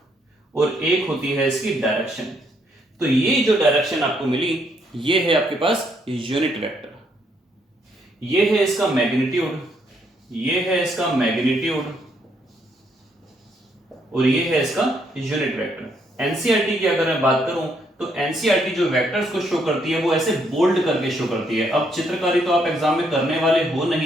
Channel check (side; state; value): both; normal; correlation 0.73